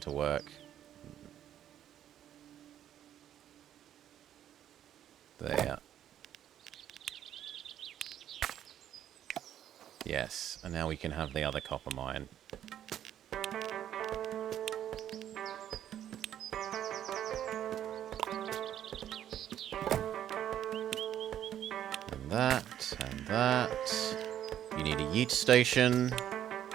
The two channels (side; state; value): left; quieter; 10.8 dB